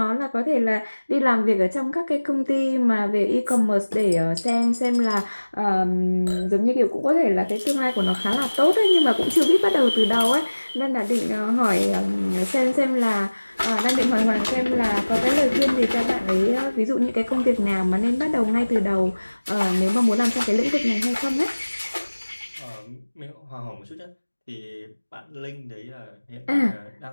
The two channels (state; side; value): inverted; both; correlation -1.00